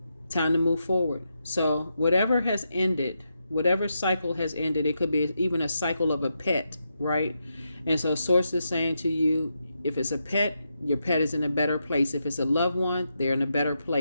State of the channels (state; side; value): inverted; both; correlation -0.84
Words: time to move forward. So whatever has ended, whatever cycle has ended, it could be even a cycle of a pet, right? And so Source is saying to you, if it's a pet, your pet is in a better place. If it's a loved one, they're in a better